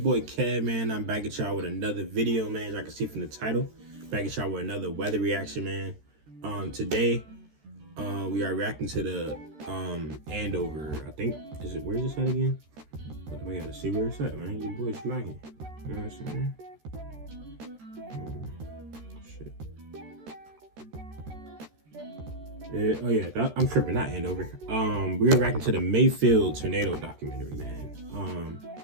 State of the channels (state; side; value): late; left; 13 ms